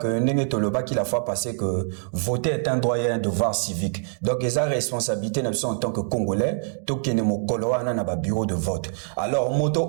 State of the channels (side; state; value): left; silent; 62 dB below the other